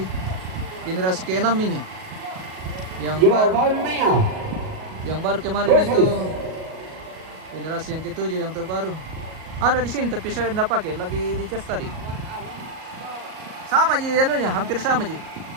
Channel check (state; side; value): late; left; 38 ms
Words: generasi ke-6 ini. Yang baru kemarin itu generasi yang ke-7 yang terbaru. Ada di sini tapi saya tidak pakai, lagi dicas tadi. Sama aja anunya, hampir sama aja.